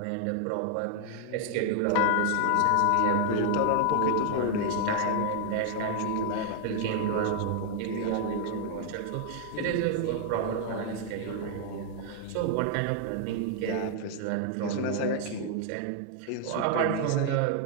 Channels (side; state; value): both; different; correlation 0.00